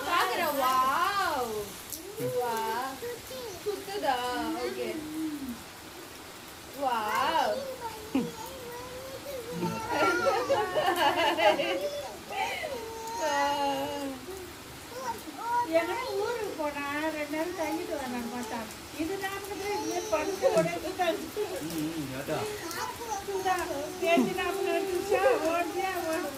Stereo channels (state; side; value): identical; both; correlation 1.00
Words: பாக்குறேன். வாவ் வாவ் சுத்துதா? Okay wow. எங்கன்னா ஊருக்கு போனா 2 நாள் தங்கிட்டு வரேன் மாட்டான். இது நாமக்கே இது படுத்து உடைச்சுட்டாங்க. பேச்சு நாம நினைச்சா ஓடியா ஓடு